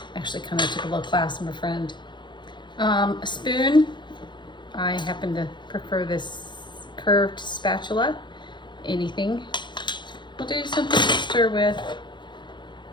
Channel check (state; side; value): late; right; 0.22 ms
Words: actually kind of took a little class from a friend. A spoon. I happen to prefer this curved spatula. Anything. We'll do something to stir with.